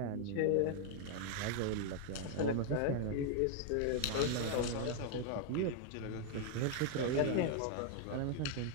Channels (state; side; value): different; both; correlation 0.00